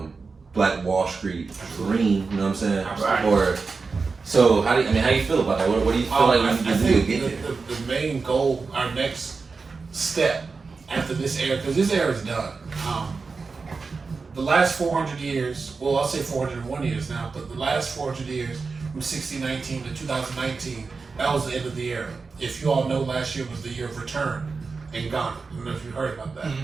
Black Wall Street dream. You know what I'm saying? Right. So how do you feel about that? What do you feel like we need to do to get there? The main goal, our next step after this era, because this era is done. The last 400 years, well, I'll say 401 years now, but the last 400 years, from 1619 to 2019, that was the end of the era. If you all know, last year was the year of return in Ghana. I don't know if you heard about that.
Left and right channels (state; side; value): quieter; left; 4.5 dB